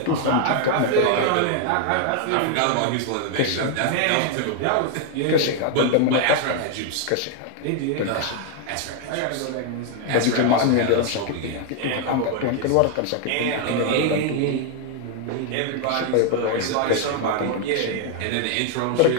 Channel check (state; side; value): different; both; correlation 0.00